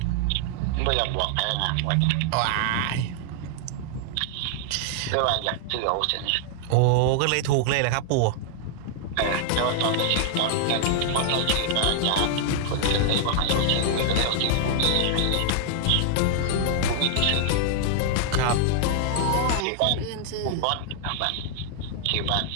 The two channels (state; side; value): different; both; correlation -0.01